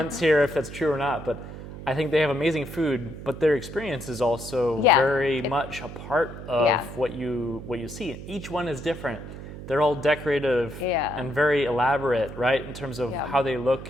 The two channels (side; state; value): right; noise; hum, 11 dB below the sound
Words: here if that's true or not, but I think they have amazing food, but their experience is also very much a part of what you see. Each one is different. They're all decorative and very elaborate, right, in terms of how they